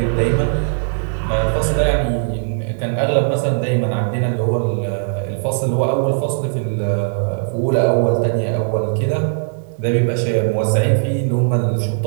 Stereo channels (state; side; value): silent; left; digital silence